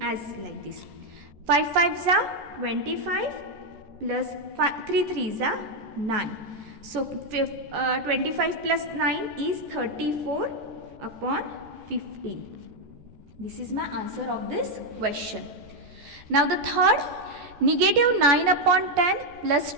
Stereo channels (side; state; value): left; late; 14 ms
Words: as like this. 5 5s are 25 plus 3 3s are 9. So 25 plus 9 is 34 upon 15. This is my answer of this question. Now the third, negative 9 upon 10 plus